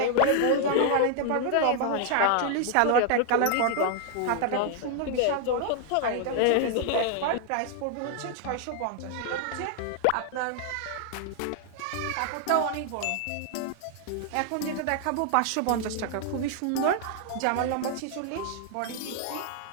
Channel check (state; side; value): different; both; correlation 0.00